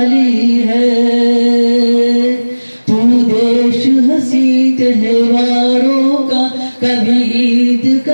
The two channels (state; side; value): inverted; both; correlation -1.00